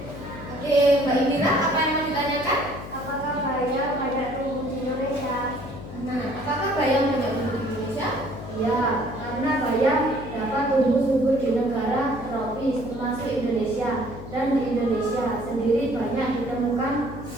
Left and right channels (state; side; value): noise; left; hum, 12 dB below the sound